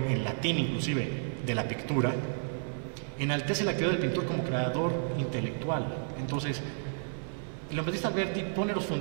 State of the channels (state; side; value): silent; left; 57 dB below the other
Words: en latín inclusive de la pictura, enaltece la actividad del pintor como creador intelectual. Entonces, Leon Battista Alberti pone los